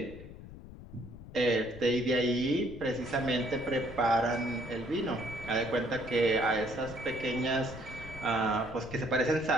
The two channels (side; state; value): left; noise; rumble, 15 dB below the sound